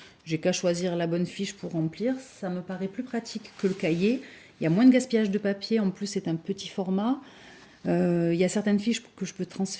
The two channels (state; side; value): identical; both; correlation 1.00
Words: j'ai qu'à choisir la bonne fiche pour remplir. Ça me paraît plus pratique que le cahier. Il y a moins de gaspillage de papier. En plus, c'est un petit format. Il y a certaines fiches que je peux